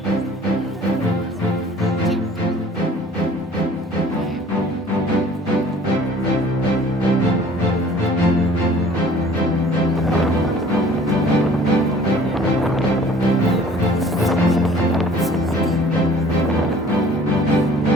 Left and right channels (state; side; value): normal; both; correlation 0.51